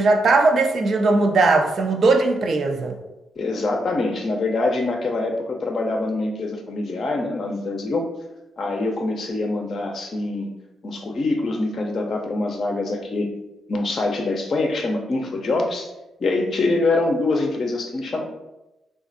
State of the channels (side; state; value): both; normal; correlation 0.80